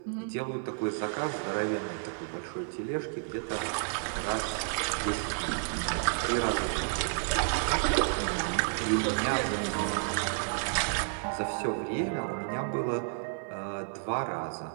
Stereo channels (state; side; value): silent; left; 57 dB below the other